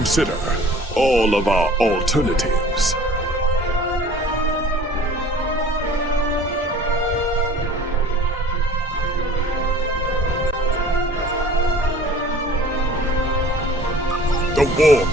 all of our alternatives. The war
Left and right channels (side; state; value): both; normal; correlation 0.48